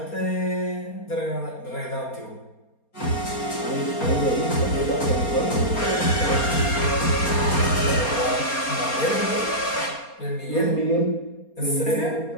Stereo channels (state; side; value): late; right; 4.3 ms